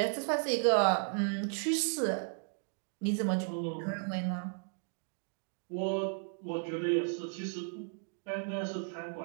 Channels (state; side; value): silent; left; 55 dB below the other